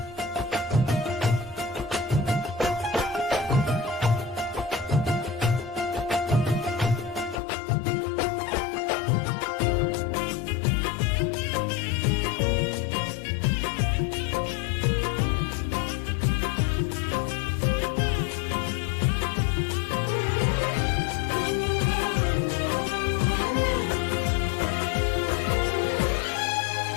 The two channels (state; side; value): drops out; right; at 7.4 s